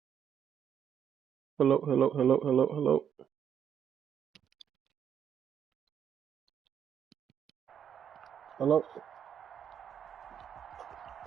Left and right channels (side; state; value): left; quieter; 8.6 dB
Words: Hello, hello, hello, hello, hello. Hello?